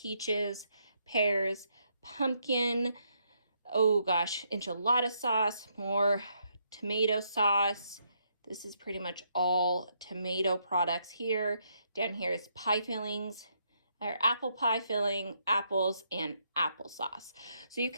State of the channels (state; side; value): inverted; both; correlation -0.75